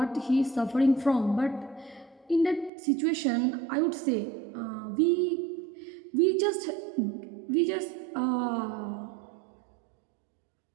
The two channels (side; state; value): left; drops out; at 2.7 s